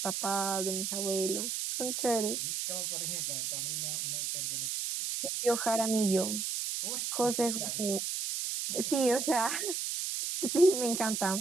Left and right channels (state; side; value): noise; right; hiss, 2 dB below the sound